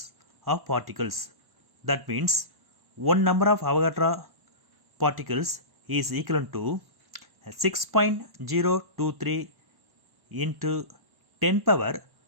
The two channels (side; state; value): left; late; 1.1 ms